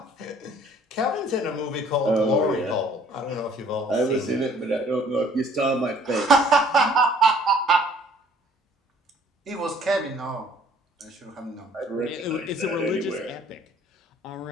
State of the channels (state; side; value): normal; both; correlation 0.57